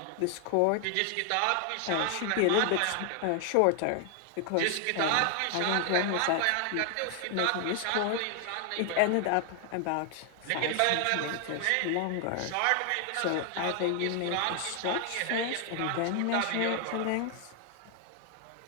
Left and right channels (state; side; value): different; both; correlation 0.00